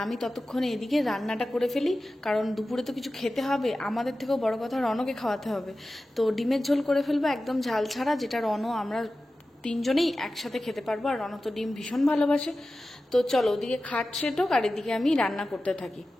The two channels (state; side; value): normal; both; correlation 0.94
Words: আমি ততক্ষণে এদিকে রান্নাটা করে ফেলি, কারণ দুপুরে তো কিছু খেতে হবে। আমাদের থেকেও বড় কথা রনকে খাওয়াতে হবে। তো ডিমের ঝোল করে ফেলবো একদম ঝাল ছাড়া, যেটা রন আমরা 3 জনেই একসাথে খেতে পারবো। আর রন তো ডিম ভীষণ ভালোবাসে। তো চলো ওদিকে খাট সেট হোক, আর এদিকে আমি রান্না করতে থাকি।